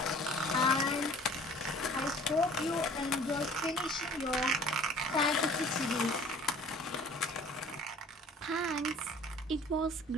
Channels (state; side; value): normal; both; correlation 0.49